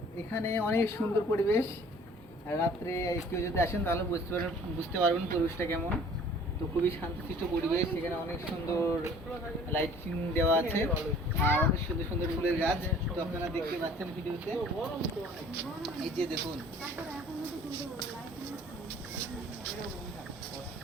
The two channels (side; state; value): right; noise; hum, 28 dB below the sound